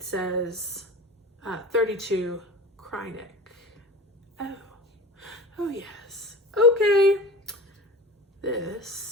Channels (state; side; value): normal; both; correlation 0.34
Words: says 32 Krynic. Oh yes. Okay,